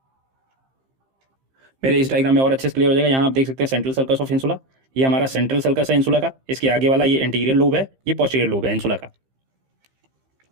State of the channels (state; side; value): late; left; 15 ms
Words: मेरे इस डायग्राम में और अच्छे से क्लियर हो जाएगा। यहाँ आप देख सकते हैं सेंट्रल सर्कस ऑफ इंसुला, ये हमारा सेंट्रल सर्कस है इंसुला का, इसके आगे वाला ये एंटीरियर लोब है, ये पोस्टीरियर लोब है इंसुला का।